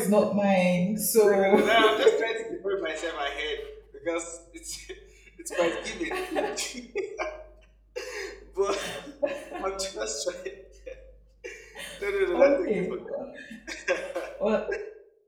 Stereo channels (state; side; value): identical; both; correlation 1.00